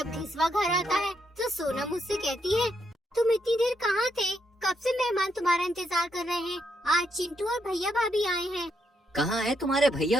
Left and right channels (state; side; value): normal; both; correlation 0.78